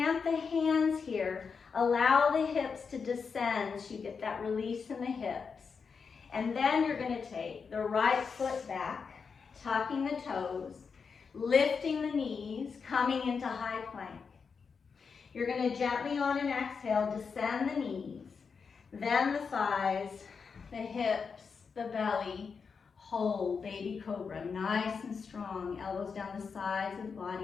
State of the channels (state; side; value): quieter; right; 5.6 dB